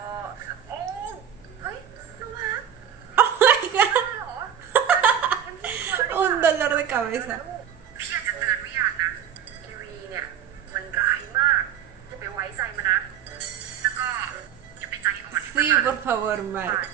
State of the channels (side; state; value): left; quieter; 9.3 dB